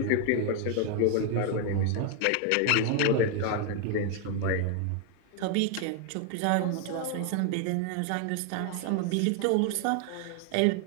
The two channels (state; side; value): different; both; correlation 0.01